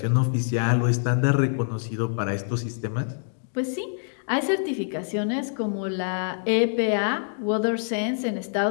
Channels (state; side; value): silent; right; digital silence